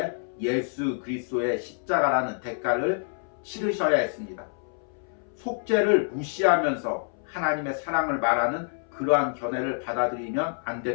예수 그리스도의 십자가라는 대가를 치르셔야 했습니다. 속죄를 무시하면서 하나님의 사랑을 말하는 그러한 견해를 받아들이면 안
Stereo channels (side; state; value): right; silent; 60 dB below the other